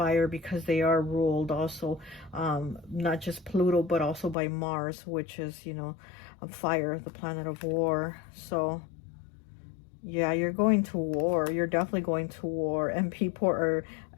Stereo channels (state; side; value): drops out; right; at 4.4 s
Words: because they are ruled also, not just Pluto, but also by Mars, which is, you know, fire, the planet of war. So yeah, you're going to war. You're definitely going to war. And people are,